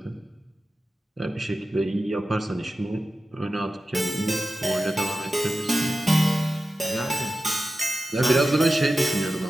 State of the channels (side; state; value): both; normal; correlation 0.93